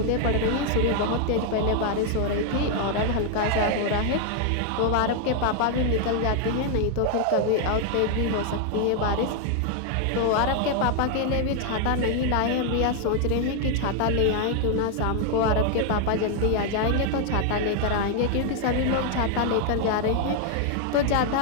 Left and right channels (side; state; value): both; different; correlation 0.00